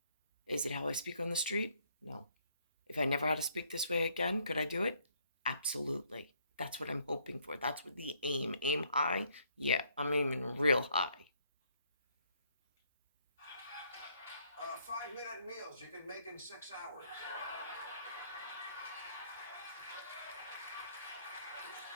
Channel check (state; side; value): inverted; both; correlation -0.68